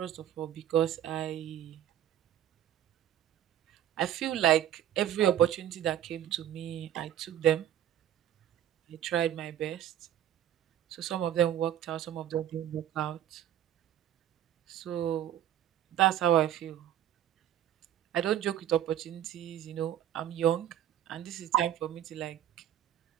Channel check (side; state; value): left; quieter; 11.3 dB